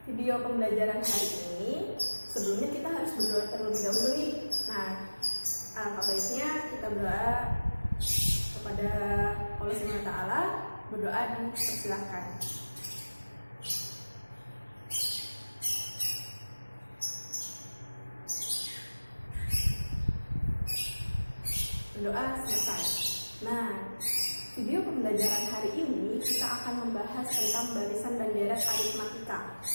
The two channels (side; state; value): both; inverted; correlation -1.00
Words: video pembelajaran hari ini, sebelumnya kita harus berdoa terlebih dahulu nih. Nah, apa baiknya kita berdoa kepada Allah Subhanahu wa Ta'ala. Berdoa dipersilahkan. Berdoa selesai. Nah, video pembelajaran hari ini kita akan membahas tentang barisan dan deret aritmatika.